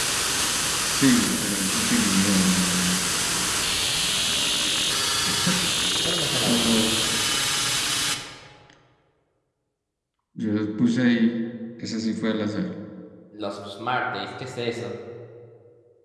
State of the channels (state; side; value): identical; both; correlation 1.00